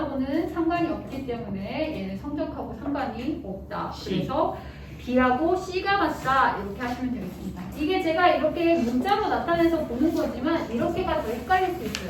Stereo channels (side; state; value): both; identical; correlation 1.00